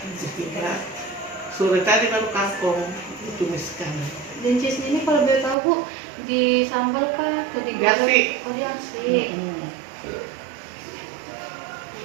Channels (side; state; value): left; drops out; at 5.6 s